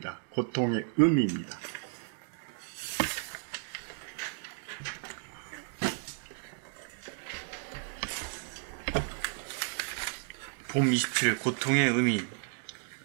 고통의 의미입니다. 봄 27 고통의 의미.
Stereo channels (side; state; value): left; silent; 56 dB below the other